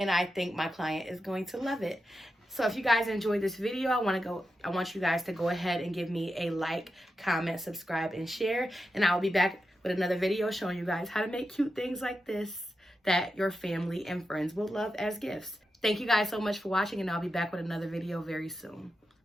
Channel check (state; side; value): normal; both; correlation 0.89